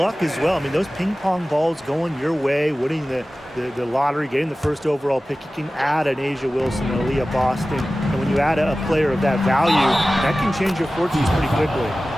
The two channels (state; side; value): normal; both; correlation 0.96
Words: as well. I mean, those ping pong balls going your way, winning the lottery, getting the first overall pick, you can add an Asia Wilson, an Aaliyah Boston, and when you add a player of that value, that can change your fortunes pretty quickly.